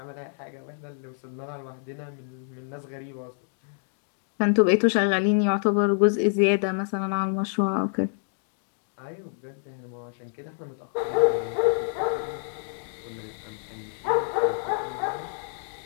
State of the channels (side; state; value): right; silent; digital silence